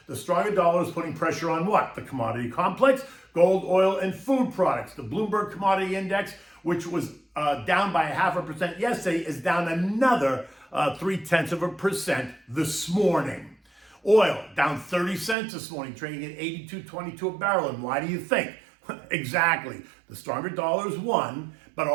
The stronger dollar is putting pressure on what? The commodity complex, gold, oil, and food products. The Bloomberg Commodity Index, which was down by 0.5% yesterday, is down another 0.3% this morning. Oil down 30 cents this morning, trading at $82.22 a barrel. And why do you think? Exactly. The stronger dollar is one, but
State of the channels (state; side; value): drops out; left; at 15.4 s